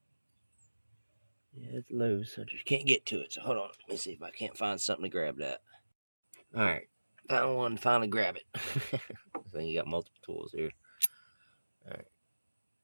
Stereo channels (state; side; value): inverted; both; correlation -1.00